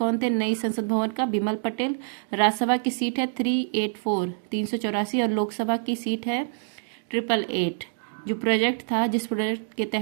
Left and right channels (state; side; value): silent; left; digital silence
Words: थे नई संसद भवन का? बिमल पटेल। राज्यसभा की सीट है 384 और लोकसभा की सीट है 888। जो प्रोजेक्ट था, जिस प्रोजेक्ट के